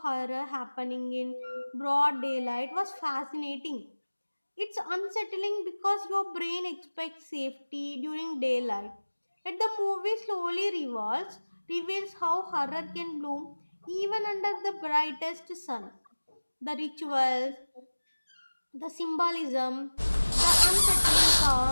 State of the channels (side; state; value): both; inverted; correlation -1.00